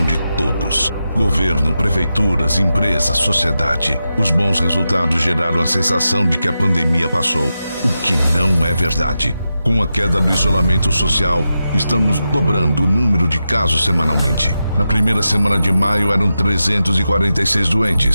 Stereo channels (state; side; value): inverted; both; correlation -0.90